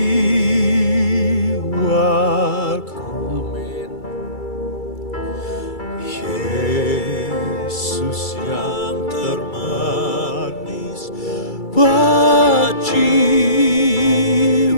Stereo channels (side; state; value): right; late; 2.3 ms